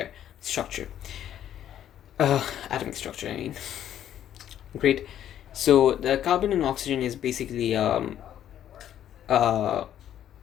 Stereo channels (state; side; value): quieter; right; 10.9 dB